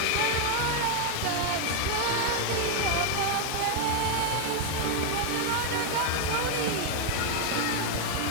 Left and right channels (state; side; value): different; both; correlation 0.01